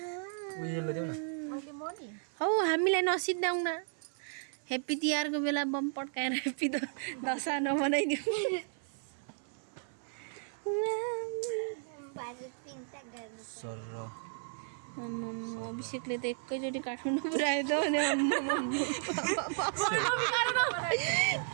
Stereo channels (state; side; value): silent; left; 55 dB below the other